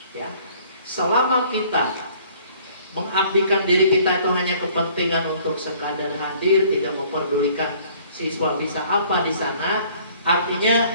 Ya, selama kita mengabdikan diri kita itu hanya kepentingan untuk sekadar hadir, tidak memperdulikan siswa bisa apa di sana,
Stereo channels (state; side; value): inverted; both; correlation -0.57